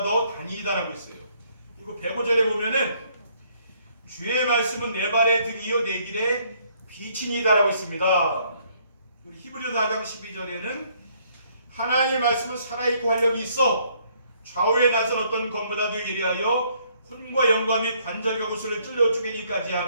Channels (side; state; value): both; inverted; correlation -0.66